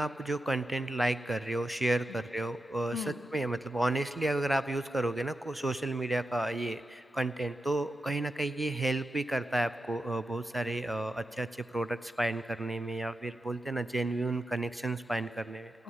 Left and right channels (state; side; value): normal; both; correlation 0.89